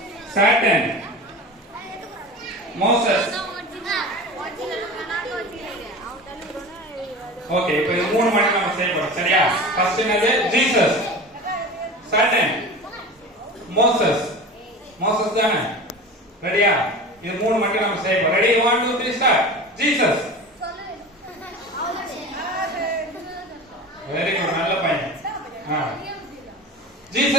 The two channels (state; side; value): normal; both; correlation 0.33